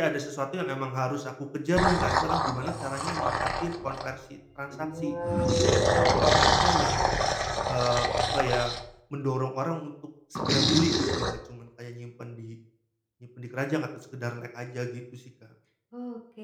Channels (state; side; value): identical; both; correlation 1.00